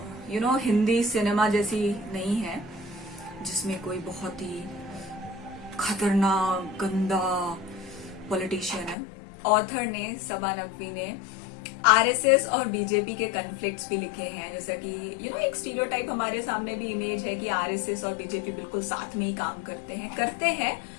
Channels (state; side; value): drops out; right; at 9.0 s